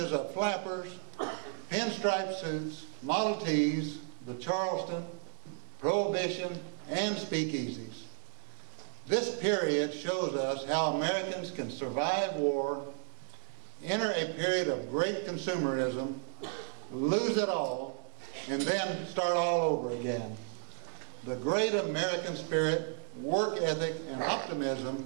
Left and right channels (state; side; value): silent; left; digital silence